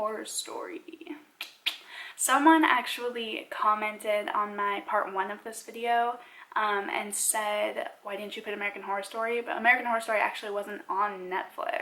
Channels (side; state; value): both; identical; correlation 1.00